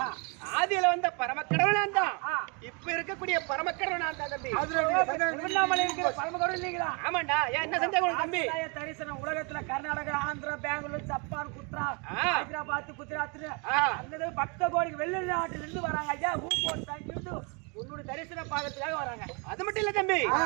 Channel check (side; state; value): left; quieter; 33.1 dB